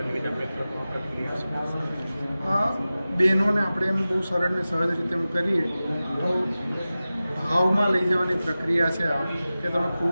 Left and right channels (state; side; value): inverted; both; correlation -0.96